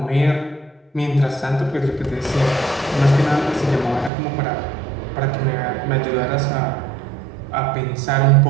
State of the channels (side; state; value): left; drops out; at 4.1 s